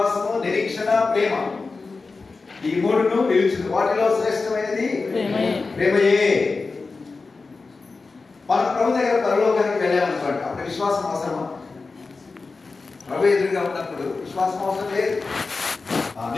నిరీక్షణ, ప్రేమ, ఈ 3ను నిలిచింది. వాటిలో శ్రేష్టమైనది ప్రేమయే. మనం ప్రభు దగ్గర పరలోకానికి వెళ్ళామనుకోండి, అప్పుడు విశ్వాసం అవసరమా? ప్రభు ఎదురుగా ఉన్నప్పుడు విశ్వాసం అవసరం లేదు.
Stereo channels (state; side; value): quieter; right; 4.1 dB